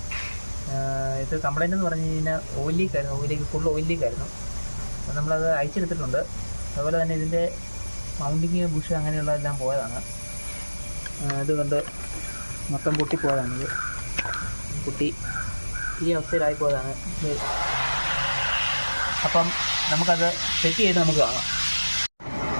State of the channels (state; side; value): inverted; both; correlation -1.00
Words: ഇത് കംപ്ലൈൻ്റ് എന്ന് പറഞ്ഞു കഴിഞ്ഞാൽ ഓയിൽ ലീക്കായിരുന്നു, ഫുൾ ഓയിൽ ലീക്കായിരുന്നു. അപ്പോൾ നമ്മളത് അയച്ചെടുത്തിട്ടുണ്ട്. അതുപോലെ തന്നെ ഇതിൻ്റെ മൗണ്ടിങ് ബുഷ് അങ്ങനെയുള്ളതെല്ലാം പോയതാണ്. ഇതുകൊണ്ട് മൊത്തം പൊട്ടിപ്പോയതാണിത്. പൊട്ടി ഈ അവസ്ഥയിലായിപ്പോയതാണ് ഇത്. അപ്പം നമുക്കത് സെറ്റ് ചെയ്ത് നമുക്ക് കാണാം.